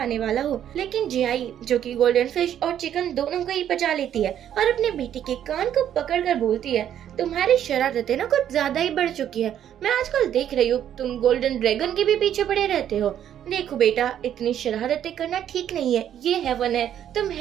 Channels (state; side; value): quieter; left; 10.2 dB